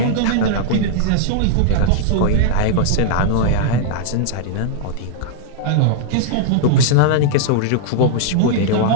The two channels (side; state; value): both; different; correlation -0.01